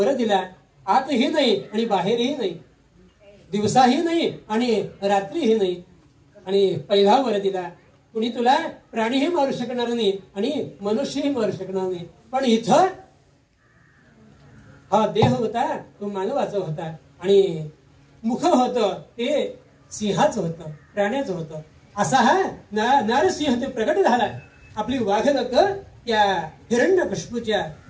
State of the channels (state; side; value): identical; both; correlation 1.00